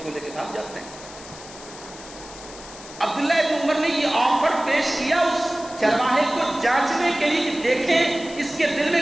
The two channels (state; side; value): noise; left; hiss, 16 dB below the sound